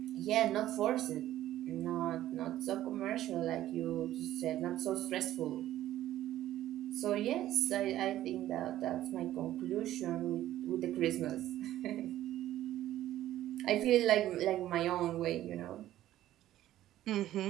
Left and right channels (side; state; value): left; quieter; 13.5 dB